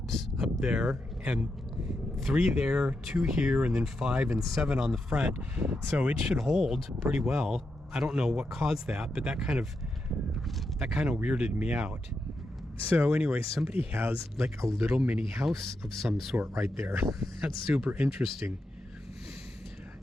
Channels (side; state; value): both; normal; correlation 0.85